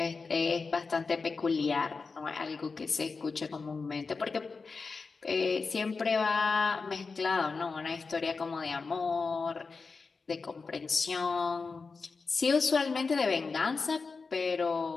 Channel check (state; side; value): quieter; right; 4.5 dB